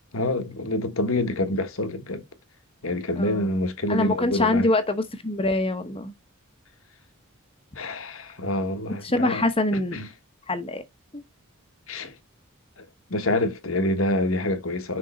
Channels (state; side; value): normal; both; correlation 0.27